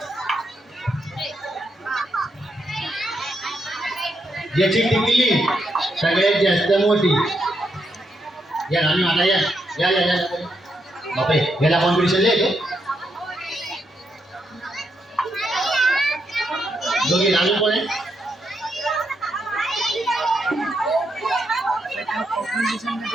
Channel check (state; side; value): normal; both; correlation 0.80